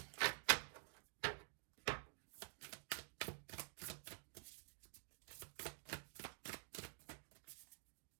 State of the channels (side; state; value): left; silent; digital silence